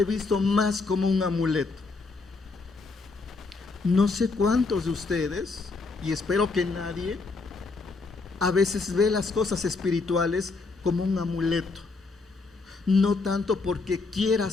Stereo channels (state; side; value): quieter; right; 3.9 dB